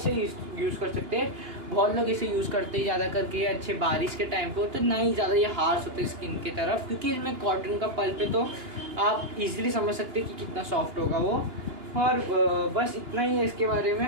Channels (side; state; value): left; late; 2.9 ms